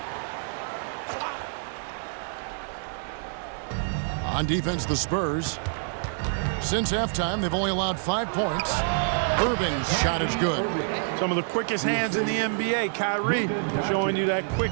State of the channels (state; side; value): silent; left; digital silence